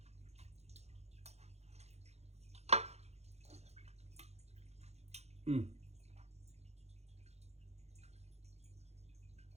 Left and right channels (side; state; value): left; late; 0.31 ms